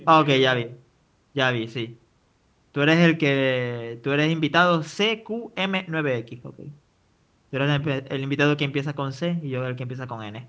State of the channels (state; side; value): identical; both; correlation 1.00